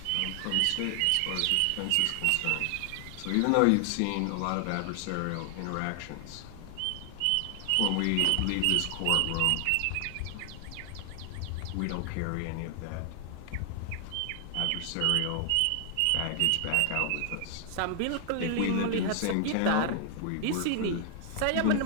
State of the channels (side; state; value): both; different; correlation 0.00